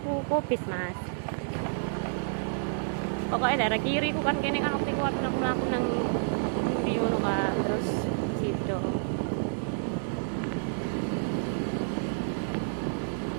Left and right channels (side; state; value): left; silent; 58 dB below the other